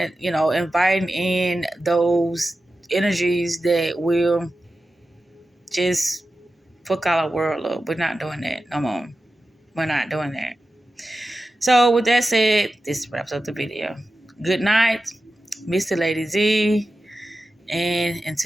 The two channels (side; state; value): both; normal; correlation 0.93